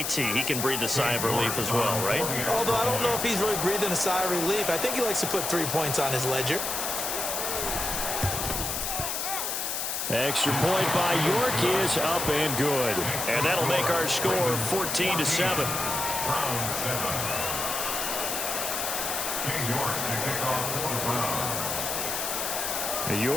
He can breathe a sigh of relief as well, right? Although I don't know if he's really breathing a sigh of relief. I think he likes to put 3 points on his ledger. Extra point by York is up and good. And that'll make our score 14-7. Browns 7. York to kick off for the Browns.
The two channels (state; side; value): noise; left; hiss, 2 dB below the sound